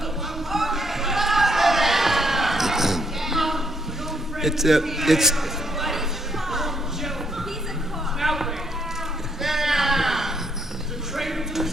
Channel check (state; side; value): normal; both; correlation 0.72